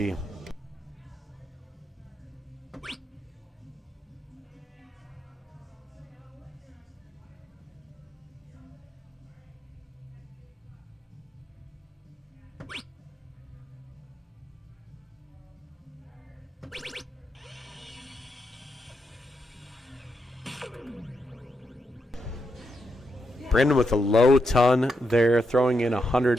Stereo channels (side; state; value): both; normal; correlation 0.83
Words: Brandon with a low ton there, throwing in